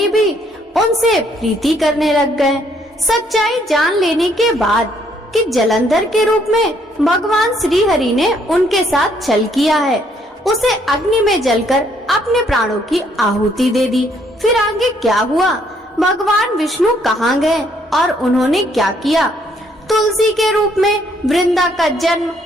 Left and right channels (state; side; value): normal; both; correlation 0.68